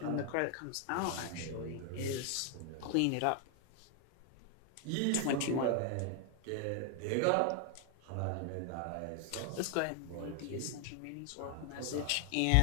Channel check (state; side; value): different; both; correlation 0.00